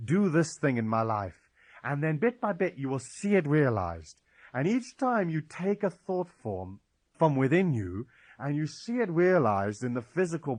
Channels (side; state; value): both; identical; correlation 1.00